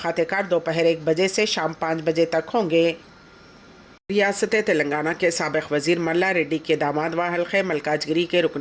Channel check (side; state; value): both; identical; correlation 1.00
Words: दोपहर 1 बजे से शाम 5 बजे तक होंगे। रियासत तेलंगाना के साबिक़ वज़ीर मल्ला रेड्डी के दामाद व हल्क़े मल्काजगिरी के